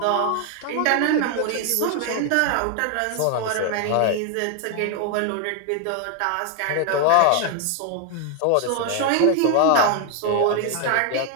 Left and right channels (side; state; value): both; different; correlation 0.00